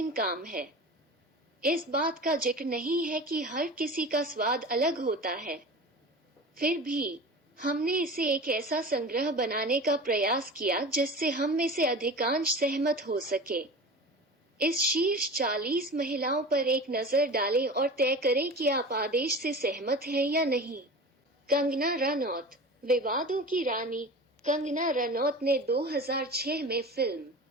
काम है। इस बात का जिक्र नहीं है कि हर किसी का स्वाद अलग होता है। फिर भी हमने इसे एक ऐसा संग्रह बनाने का प्रयास किया जिससे हम में से अधिकांश सहमत हो सके। इस शीर्ष 40 महिलाओं पर एक नजर डालें और तय करें कि आप आदेश से सहमत हैं या नहीं। कंगना रनौत, विवादों की रानी। कंगना रनौत ने 2006 में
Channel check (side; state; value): both; normal; correlation 0.34